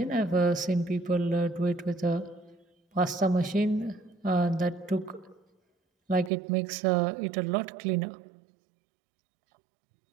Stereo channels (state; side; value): drops out; left; at 6.3 s